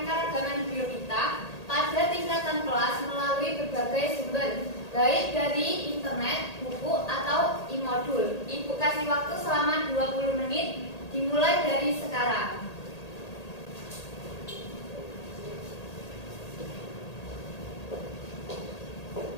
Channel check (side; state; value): right; late; 1.8 ms